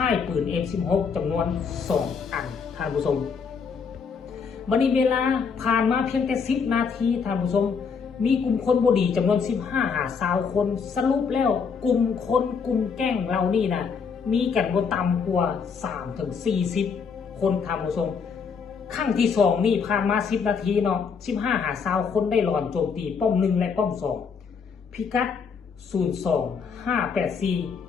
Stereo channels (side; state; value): right; quieter; 5.9 dB